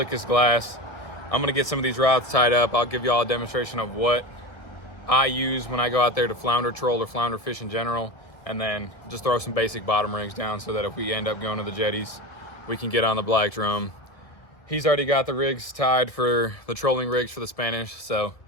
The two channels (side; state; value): right; late; 1.9 ms